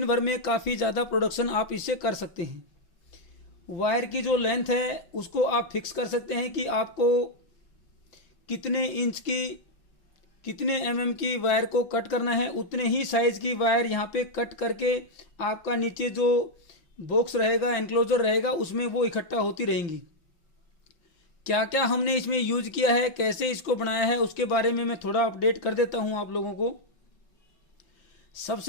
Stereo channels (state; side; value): late; right; 5.9 ms